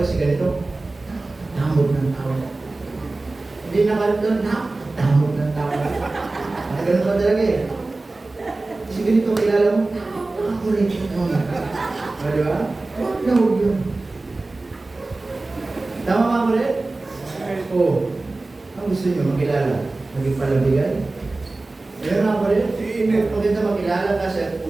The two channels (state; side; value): quieter; left; 3.2 dB